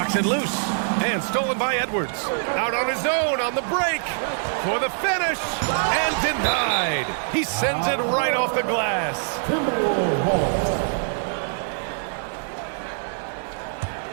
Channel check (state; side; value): silent; left; digital silence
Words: it loose. And stolen by Edwards. Out on his own on the break. For the finish. And denied. He sends it right off the glass.